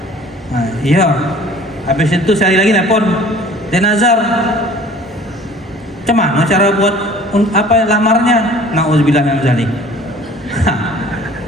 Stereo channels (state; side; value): normal; both; correlation 0.49